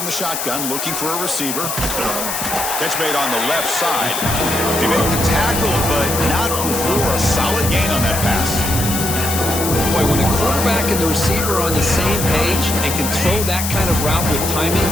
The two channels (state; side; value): noise; left; hiss, 3 dB below the sound